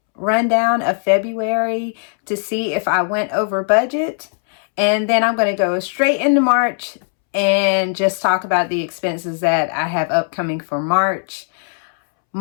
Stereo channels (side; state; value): right; silent; 67 dB below the other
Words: rundown of February to see if I went over budget. And then I'm going to go straight into March and just talk about the expenses that I have upcoming for March.